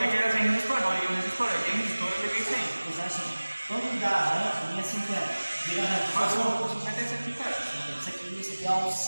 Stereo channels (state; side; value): inverted; both; correlation -1.00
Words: que ele tem resistor, não, ele é um resistor. Ele tem resistor, eu liguei sem. Mas assim, quando dá arranque, linha 50, vira arranque. Mas o 50 é esse aqui, cara. Esse aqui é